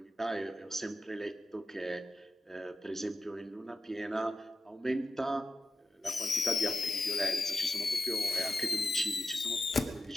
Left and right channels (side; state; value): both; normal; correlation 0.91